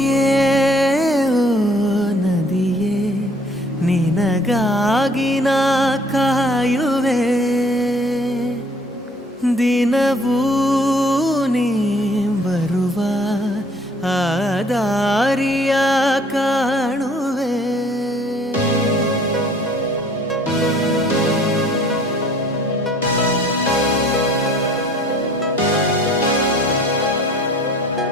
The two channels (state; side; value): normal; both; correlation 0.57